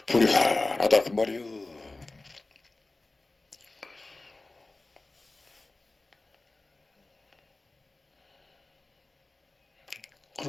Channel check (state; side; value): quieter; right; 3.2 dB